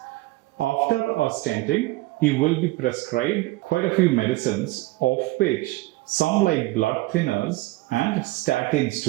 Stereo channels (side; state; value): left; quieter; 19.6 dB